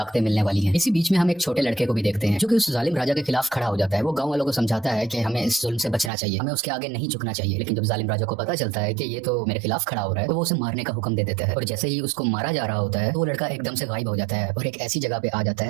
मिलने वाली हैं। इसी बीच में हम एक छोटे लड़के को भी देखते हैं जो कि उस जालिम राजा के खिलाफ खड़ा हो जाता है। वो गांव वालों को समझाता है कि हमें इस जुल्म से बचना चाहिए, हमें उसके आगे नहीं झुकना चाहिए। लेकिन जब जालिम राजा को पता चलता है कि ये तो मेरे खिलाफ खड़ा हो रहा है, तो वो उसे मारने का हुक्म दे देता है। और जैसे ही उसको मारा जा रहा होता है तो वो लड़का एकदम से गायब हो जाता है और एक ऐसी जगह पे आ जाता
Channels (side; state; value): left; drops out; at 6.1 s